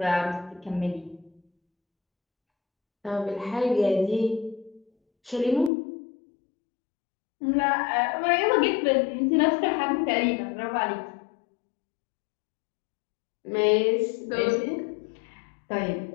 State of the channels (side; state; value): right; drops out; at 5.7 s